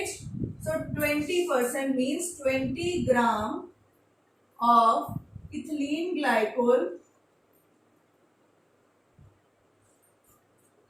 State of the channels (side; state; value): both; identical; correlation 1.00